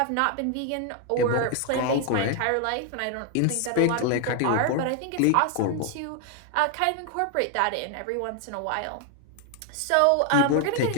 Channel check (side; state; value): both; different; correlation 0.01